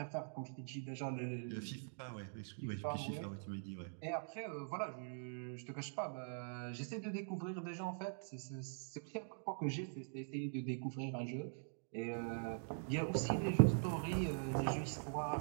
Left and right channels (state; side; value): silent; left; digital silence